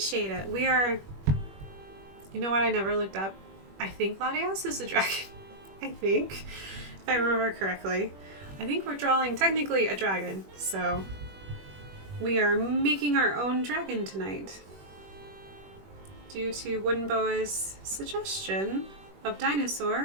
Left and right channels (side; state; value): left; late; 21 ms